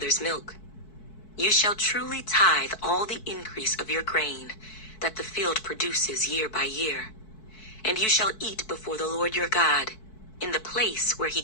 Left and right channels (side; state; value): right; late; 4.6 ms